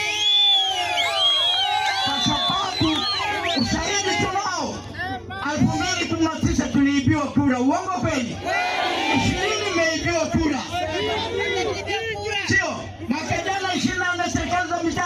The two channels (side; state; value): both; identical; correlation 1.00